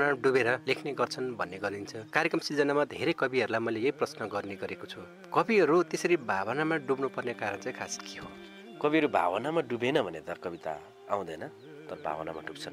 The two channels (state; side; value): identical; both; correlation 1.00